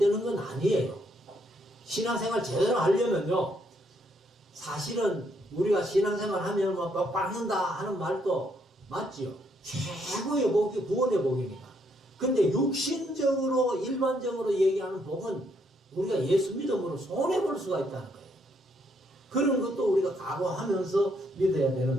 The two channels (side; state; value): both; normal; correlation 0.72